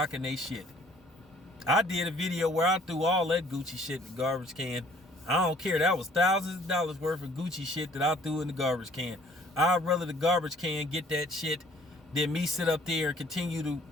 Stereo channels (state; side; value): normal; both; correlation 0.57